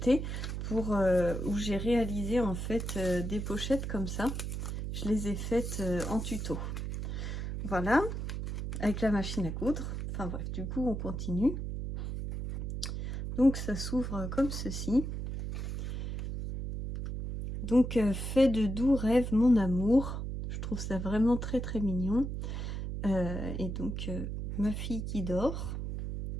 pour où j'ai réalisé en fait des pochettes comme ça. Je les ai faites en tuto. Voilà, avec la machine à coudre. Enfin bref, du coup on continue. Donc ça s'ouvre comme ceci. Donc fait de doux rêves mon amour. Je trouve ça vraiment très très mignon. Et donc ma fille qui dort.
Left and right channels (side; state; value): right; noise; hum, 4 dB below the sound